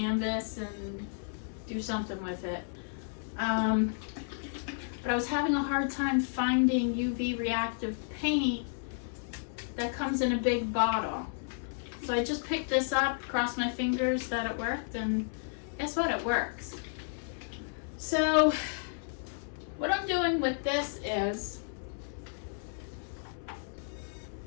and do something with it. But I was having a hard time finding UV reactive paint that comes in a big bottle. So I just picked this up, crossed my fingers that it worked, and guess what? It works. So what I'm doing with this is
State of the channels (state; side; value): silent; right; 56 dB below the other